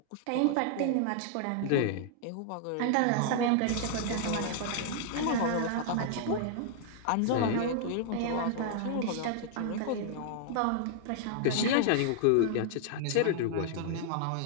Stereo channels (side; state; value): both; different; correlation -0.01